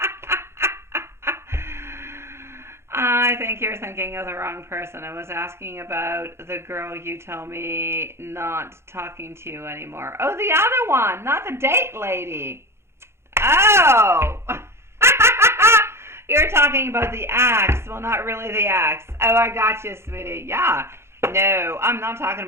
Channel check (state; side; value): late; left; 0.12 ms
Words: I think you're thinking of the wrong person. I was asking about the girl you told me not talking to you anymore. Oh, the other one, not the date lady. Oh! You're talking about the ex. Well, not really the ex. Oh, I got you, sweetie. Yeah. No, I'm not talking